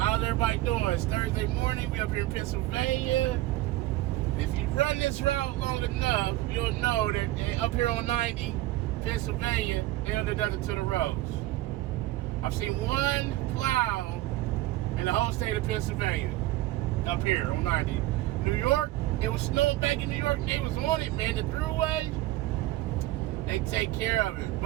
everybody doing? It's Thursday morning. We up here in Pennsylvania. If you run this route long enough, you'll know that up here on 90, Pennsylvania, they don't do nothing to the roads. I've seen one plow in the whole state of Pennsylvania up here on 90. New York, it was snowing back in New York, and they was on it, man. The throughway, they take care of it.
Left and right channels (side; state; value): left; quieter; 16.7 dB